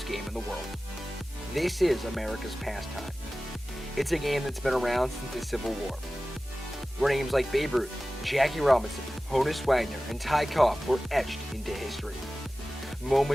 game in the world." This is America's pastime. It's a game that's been around since the Civil War, where names like Babe Ruth, Jackie Robinson, Honus Wagner, and Ty Cobb were etched into history.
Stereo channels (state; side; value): normal; both; correlation 0.96